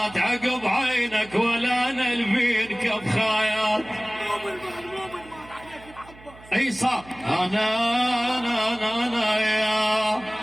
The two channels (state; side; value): noise; right; hum, 22 dB below the sound